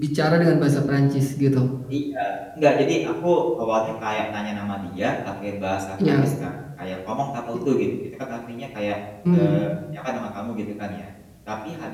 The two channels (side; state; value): both; identical; correlation 1.00